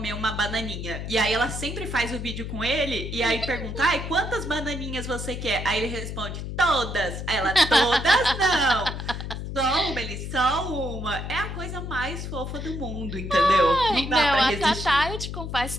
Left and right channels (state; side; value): noise; left; hum, 6 dB below the sound